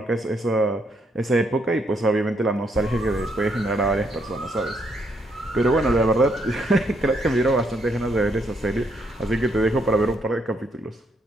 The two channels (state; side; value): normal; both; correlation 0.74